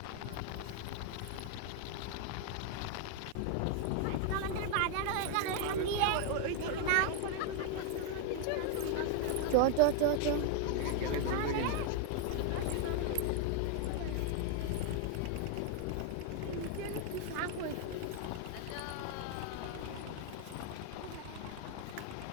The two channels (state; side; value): different; both; correlation 0.00